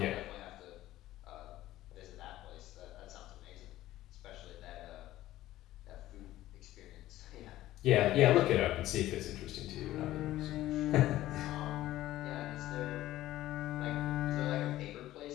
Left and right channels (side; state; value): right; quieter; 15.0 dB